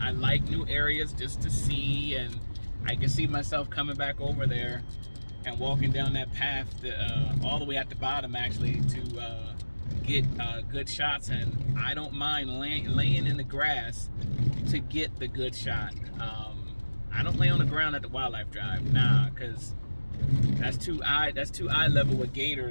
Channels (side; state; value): both; inverted; correlation -1.00